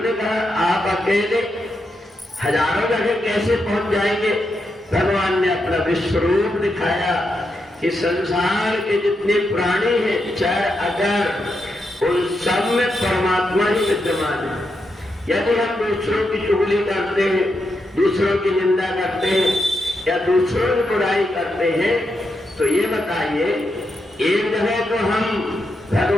ने कहा आप अकेले हजारों जगह कैसे पहुंच जाएंगे? भगवान ने अपना विश्वरूप दिखाया कि संसार के जितने प्राणी हैं, चाहे अगर, उन सब में परमात्मा ही विद्यमान है। यदि हम दूसरों की चुगली करते हैं, दूसरों की निंदा करते हैं या दूसरों की बुराई करते हैं, तो ये बताइए, एक जगह तो हम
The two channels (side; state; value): both; normal; correlation 0.84